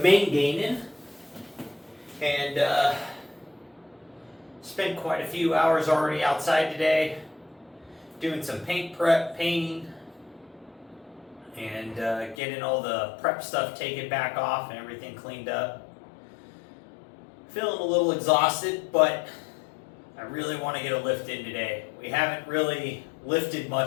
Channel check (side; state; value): right; drops out; at 12.4 s